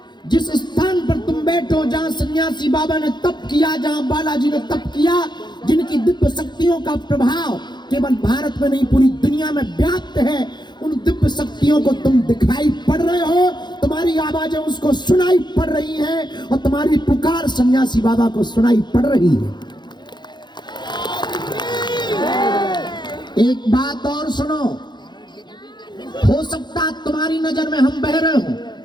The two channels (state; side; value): late; right; 0.21 ms